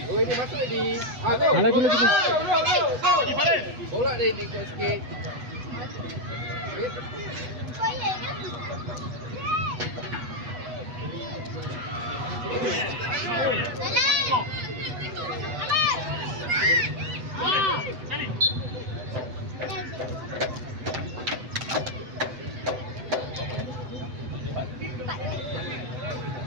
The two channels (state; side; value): late; left; 8.1 ms